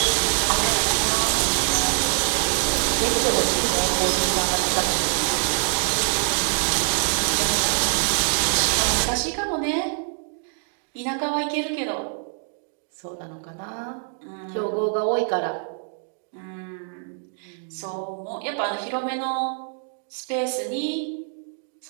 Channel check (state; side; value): silent; left; 62 dB below the other